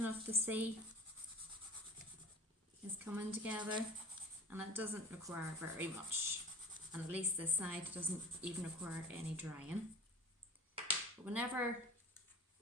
of the sea is coming together, and it doesn't require very much. And at least this side doesn't even require any drying. But whenever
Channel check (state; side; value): normal; both; correlation 0.42